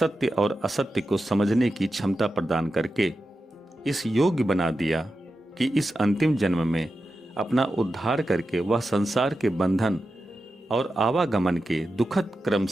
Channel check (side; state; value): both; normal; correlation 0.91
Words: और असत्य को समझने की क्षमता प्रदान करके इस योग्य बना दिया कि इस अंतिम जन्म में अपना उद्धार करके वह संसार के बंधन और आवागमन के दुखद क्रम